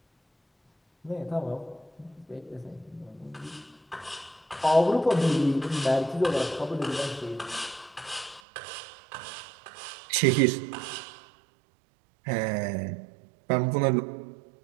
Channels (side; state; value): left; drops out; at 8.4 s